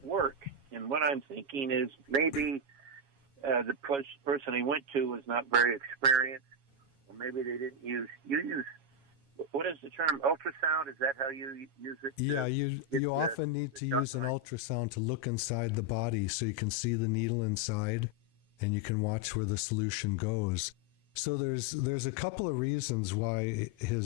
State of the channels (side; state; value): left; late; 7.2 ms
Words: work. And what I'm thinking is maybe the person he went to was not very experienced, or maybe they didn't use. You use. What is the term? Ultrasound? Is that how you use it? Yeah, you often need to use an ultrasound to look inside the body so you can see the needle inside and you can watch where the solution goes. So there's a couple of reasons why